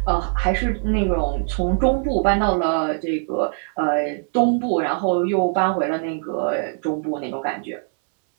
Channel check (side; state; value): left; silent; 64 dB below the other